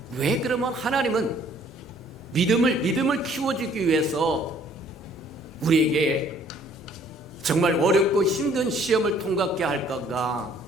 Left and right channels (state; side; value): normal; both; correlation 0.59